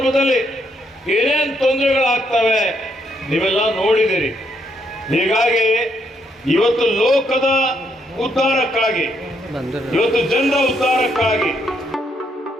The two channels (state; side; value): normal; both; correlation 0.75